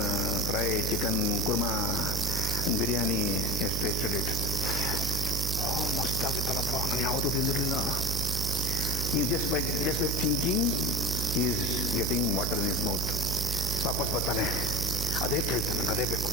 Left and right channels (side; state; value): right; noise; hum, 2 dB below the sound